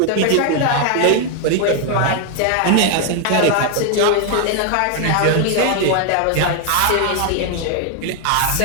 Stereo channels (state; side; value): different; both; correlation 0.00